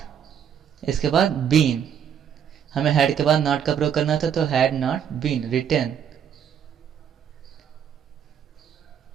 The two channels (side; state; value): left; quieter; 8.4 dB